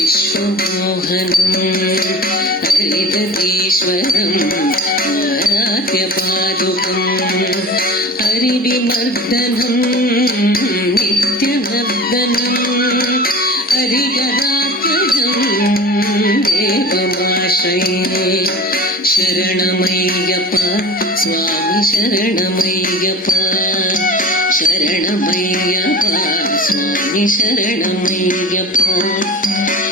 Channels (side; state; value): both; normal; correlation 0.38